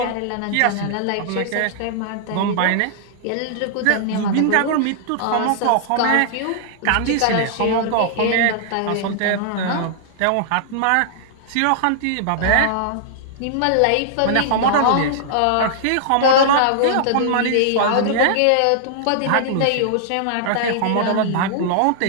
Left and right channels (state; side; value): different; both; correlation -0.01